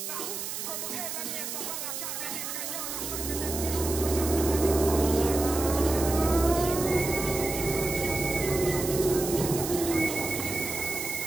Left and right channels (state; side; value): noise; right; hiss, 5 dB below the sound